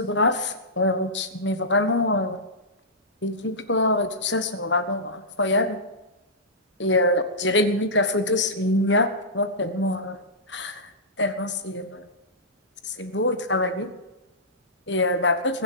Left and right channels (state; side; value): normal; both; correlation -0.16